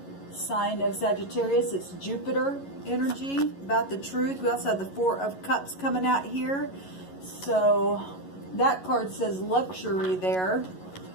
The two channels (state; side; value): late; right; 11 ms